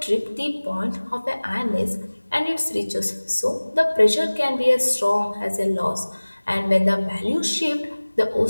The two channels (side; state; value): both; inverted; correlation -1.00